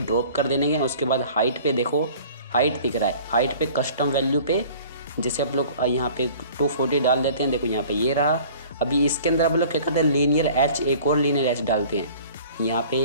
कर देने के। उसके बाद हाइट पे देखो, हाइट दिख रहा है, हाइट पे कस्टम वैल्यू पे जैसे आप लोग यहाँ पे 240 डाल देते हैं। देखो यहाँ पे ये रहा। अभी इसके अंदर आप लोग क्या करते हैं, लीनियर एच, एक और लीनियर एच डालते हैं। यहाँ पे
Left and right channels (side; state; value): both; inverted; correlation -0.47